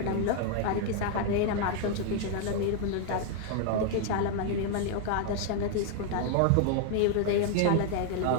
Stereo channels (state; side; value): different; both; correlation 0.00